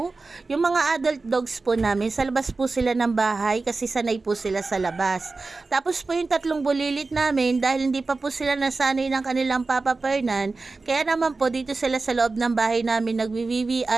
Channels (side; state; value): left; quieter; 3.8 dB